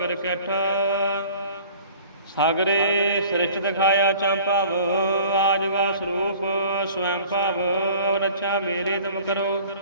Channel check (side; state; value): both; inverted; correlation -0.48